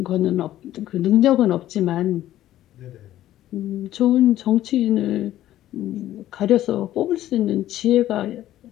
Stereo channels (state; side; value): quieter; right; 13.4 dB